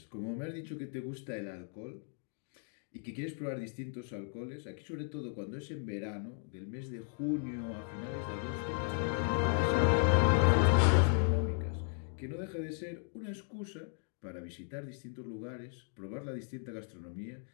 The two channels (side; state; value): right; silent; 54 dB below the other